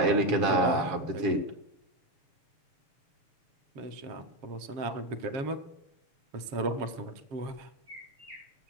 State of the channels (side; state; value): left; late; 7.3 ms